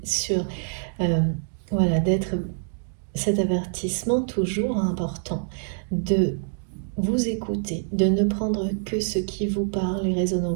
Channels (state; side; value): silent; left; digital silence